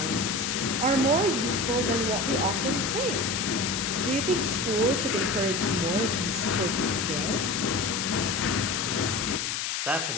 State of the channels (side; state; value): left; noise; hiss, 1 dB below the sound